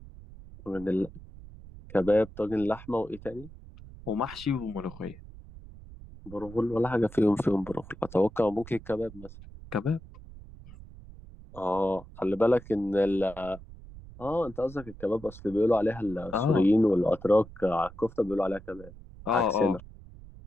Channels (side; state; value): right; noise; rumble, 17 dB below the sound